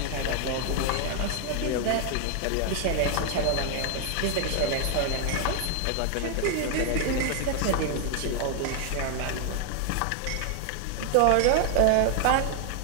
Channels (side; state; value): both; different; correlation 0.00